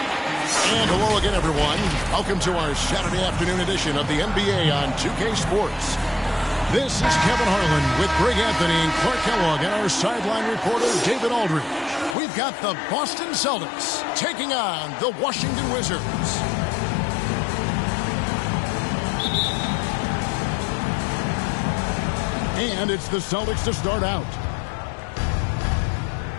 And hello again, everyone. Welcome to our Saturday afternoon edition of the NBA on 2K Sports. This is Kevin Harlan with Greg Anthony and Clark Kellogg and our sideline reporter, David Aldridge. We've got the Boston Celtics taking on the Washington Wizards. And it's the Celtics to start out.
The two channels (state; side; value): drops out; right; at 12.2 s